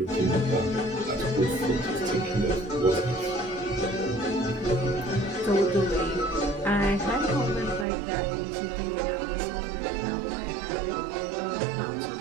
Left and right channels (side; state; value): left; drops out; at 7.9 s